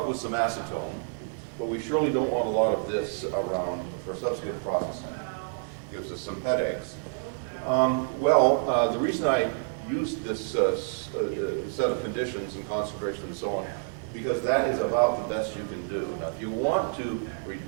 with some acetone, but we surely don't want a lot of this around for subsequent processing. Gives us some headaches. The reason I used this set of conditions and concentration and so on, because that is about the best you can do. Now, if you want to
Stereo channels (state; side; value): silent; left; 59 dB below the other